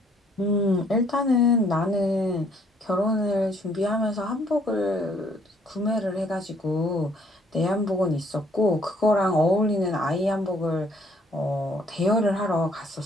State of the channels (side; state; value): both; normal; correlation 0.64